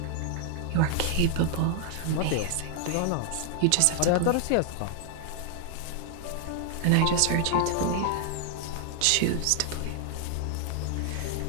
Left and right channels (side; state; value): both; different; correlation 0.00